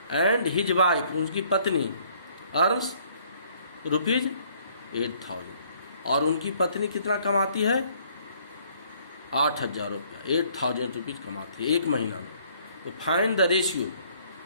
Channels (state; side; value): inverted; both; correlation -0.62